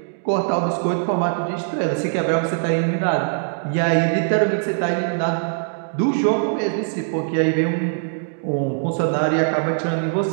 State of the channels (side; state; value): left; silent; digital silence